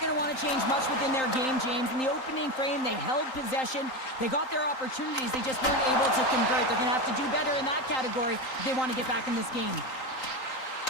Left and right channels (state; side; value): late; right; 3.8 ms